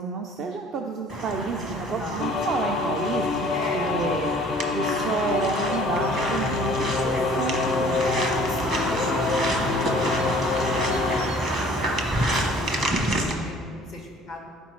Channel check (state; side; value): normal; both; correlation 0.52